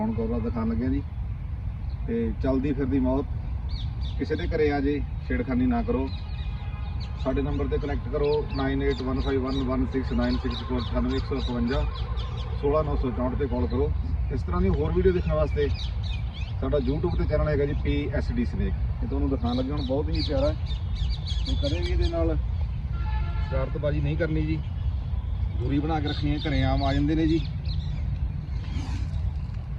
ਕਵਰ ਦਿਖਾਉਣ ਲੱਗੇ ਹਾਂ ਜੀ। ਤੇ ਚਲਦੀ ਫਿਰਦੀ ਮੌਤ, ਕਿਸੇ ਦੇ ਘਰੇ ਆ ਜੇ ਛੇੜਖਾਨੀ ਨਾ ਕਰੋ। ਸਾਡੇ ਨੰਬਰ ਤੇ ਕਨੈਕਟ ਕਰੋ 9815116964 16964 ਤੇ ਕਾਲ ਕਰੋ। ਇਸ ਤਰ੍ਹਾਂ ਦੀ ਹੋਰ ਵੀਡੀਓ ਦੇਖਣ ਵਾਸਤੇ ਸਾਡਾ YouTube ਤੇ ਚੈਨਲ ਹੈਗਾ ਜੀ PSD ਸਨੇਕ। ਇਹ ਤੁਹਾਨੂੰ ਦਿਖਾਉਣ ਲੱਗੇ ਹੁਣ ਬਹੁਤ ਹੀ ਪਿਆਰਾ ਤੇ ਕਦੇ ਵੀ ਇਹਦੇ ਨਾਲ ਸ਼ਰਾਰਤਬਾਜ਼ੀ ਨਹੀਂ ਕਰਨੀ ਜੀ, ਦੂਰੀ ਬਣਾ ਕੇ ਰੱਖਣੀ ਹੈ। ਘਰੇ ਆਮ ਆ ਜਾਂਦੇ ਨੇ ਜੀ।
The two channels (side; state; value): both; identical; correlation 1.00